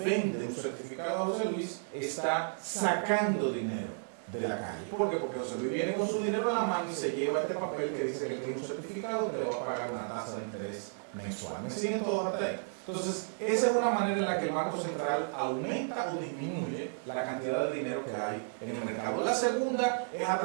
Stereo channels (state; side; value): silent; left; digital silence